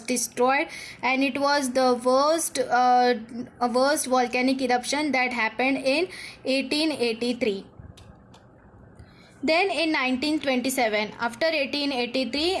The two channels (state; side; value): identical; both; correlation 1.00